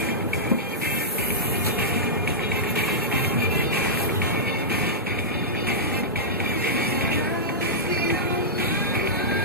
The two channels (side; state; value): both; normal; correlation -0.12